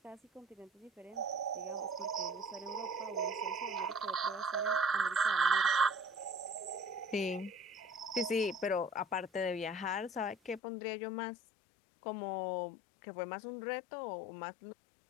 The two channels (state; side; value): drops out; right; at 10.6 s